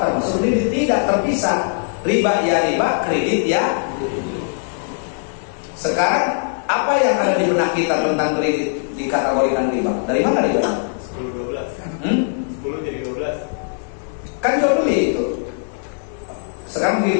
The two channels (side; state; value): right; silent; 55 dB below the other